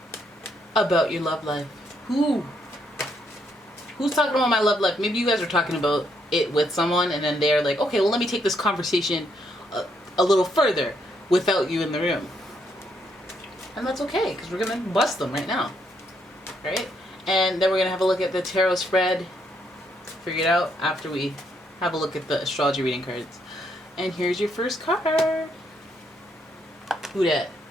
about your love life. Who's talking about my love life? Maybe you guys are talking about it with someone, and then they're like, okay, well, let me take this conversation a little further without you in the room. And that's okay, because we're gonna bust them right now, right? And then we're gonna have a look at the tarot spread, figure it out after we have a look at the astrology reading cards. And here's your first card. Who that?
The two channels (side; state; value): both; normal; correlation 0.74